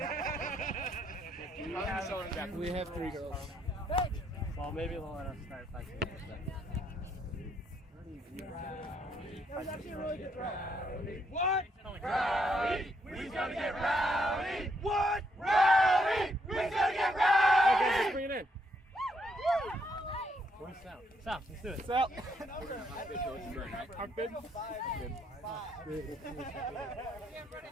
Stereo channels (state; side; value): normal; both; correlation 0.74